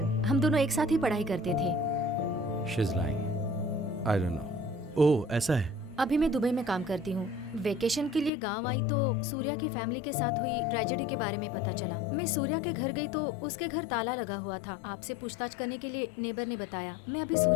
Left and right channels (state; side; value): drops out; right; at 8.3 s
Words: हम दोनों एक साथ ही पढ़ाई करते थे। She's lying. I don't know. ओह, ऐसा है। अभी मैं दुबई में काम करती हूँ। वेकेशन के लिए गांव आई तो सूर्या की फैमिली के साथ हुई ट्रेजेडी के बारे में पता चला। मैं सूर्या के घर गई तो उसके घर ताला लगा हुआ था। आपसे पूछताछ करने के लिए नेबर ने बताया। मैं अभी